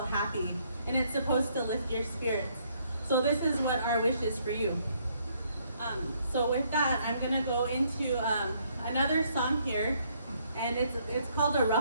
happy, and it's supposed to lift your spirits. So this is what our wish is for you. So with that, I'm gonna go into another song here, and it's called a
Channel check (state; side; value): inverted; both; correlation -0.69